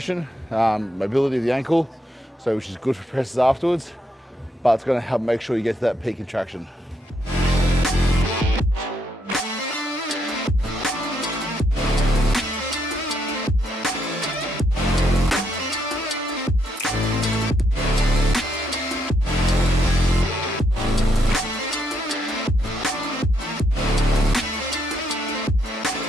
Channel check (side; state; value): both; normal; correlation 0.77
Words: mobility of the ankle, so which is good for presses afterwards, but it's going to help make sure you get to that peak contraction.